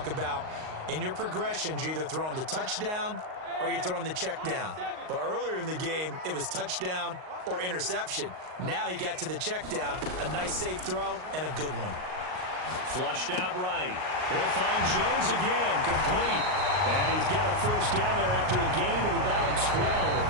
about in your progressions, you're either throwing the touchdown or you're throwing the check down. But earlier in the game, it was touchdown or interception. Now he got to the check down, a nice safe throw, and a good one. Flushed out right. He'll find Jones again, complete. And he's got a 1st down there after a gain of about 12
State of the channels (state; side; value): late; left; 38 ms